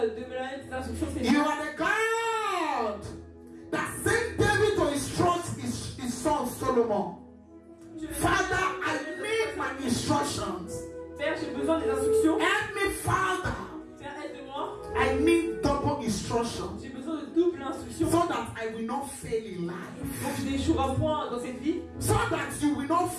de me donner tes instructions, You Seigneur. are the God that sent David to instruct his son Solomon. Father, I need my instructions. Père, j'ai besoin des instructions. Help me, Father. Père, aide-moi. I need double instructions J'ai besoin de double instruction. so that I will not fail in life. Pour que je n'échouerai point dans cette vie. So that you will not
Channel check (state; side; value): identical; both; correlation 1.00